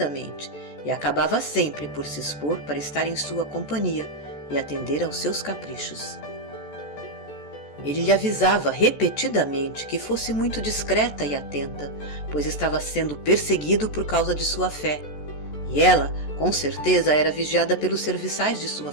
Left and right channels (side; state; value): right; late; 14 ms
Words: e acabava sempre por se expor para estar em sua companhia e atender aos seus caprichos. Ele lhe avisava repetidamente que fosse muito discreta e atenta, pois estava sendo perseguido por causa de sua fé, e ela, com certeza, era vigiada pelos serviçais de sua